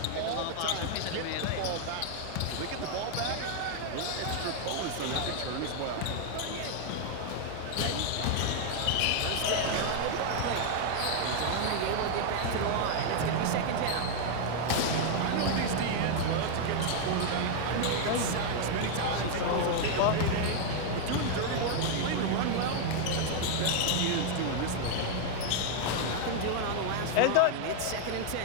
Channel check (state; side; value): different; both; correlation 0.00